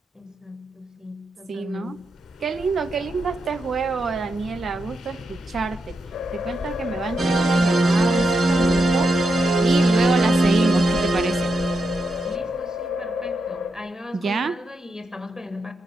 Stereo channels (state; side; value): normal; both; correlation 0.85